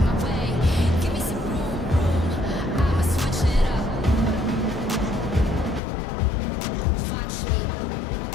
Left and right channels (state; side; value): drops out; right; at 5.8 s